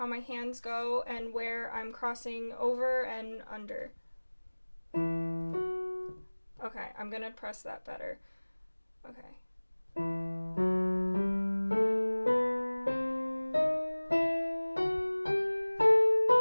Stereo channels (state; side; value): inverted; both; correlation -1.00